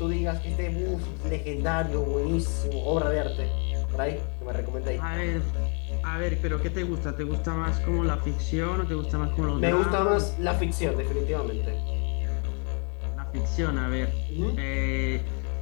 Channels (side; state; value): right; quieter; 38.1 dB